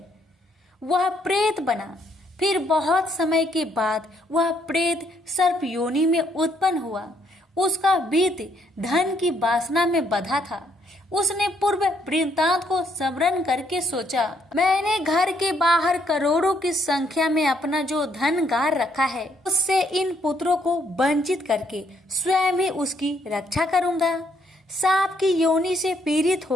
वह प्रेत बना। फिर बहुत समय के बाद वह प्रेत सर्प योनि में उत्पन्न हुआ। उसका बीत धन की वासना में बंधा था। उसने पूर्व वृत्तांत को स्मरण करके सोचा, मैंने घर के बाहर करोड़ों की संख्या में अपना जो धन गार रखा है, उससे इन पुत्रों को वंचित करके स्वयं ही उसकी रक्षा करूंगा। सांप की योनि से पीड़ित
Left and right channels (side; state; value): both; normal; correlation 0.71